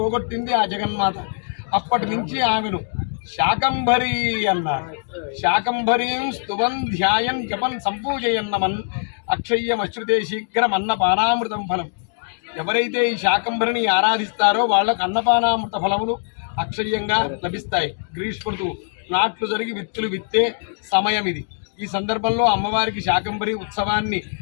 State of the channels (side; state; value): right; silent; digital silence